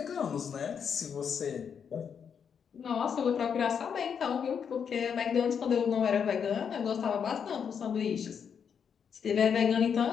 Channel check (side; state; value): right; quieter; 7.2 dB